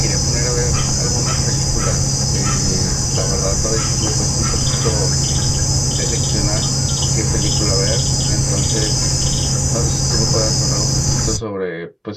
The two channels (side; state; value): both; identical; correlation 1.00